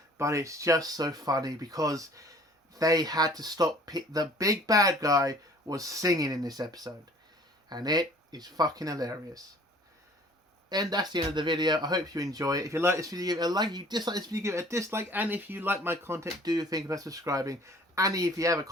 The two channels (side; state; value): both; normal; correlation 0.52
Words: but it's just so funny because they had to stop. The big bad guy was singing in this episode, and it is fucking hilarious. And that's the end of the video. I hope you enjoy it. If you like this video, give it a like. If you dislike this video, give it a dislike. And if you like my content, do think about subscribing. And if you have a